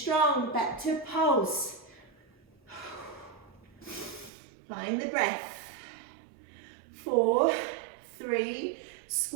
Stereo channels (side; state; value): left; drops out; at 4.3 s